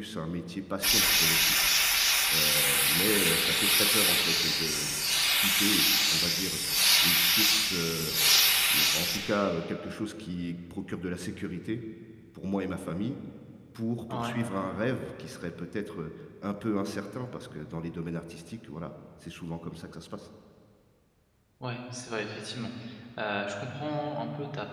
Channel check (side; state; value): both; identical; correlation 1.00